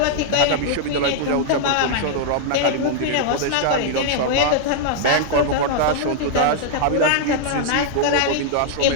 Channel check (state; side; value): different; both; correlation -0.01